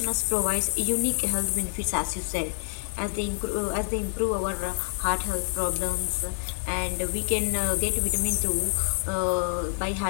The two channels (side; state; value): right; silent; digital silence